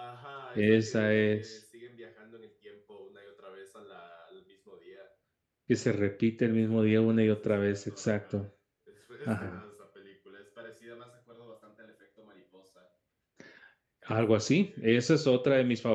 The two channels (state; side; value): identical; both; correlation 1.00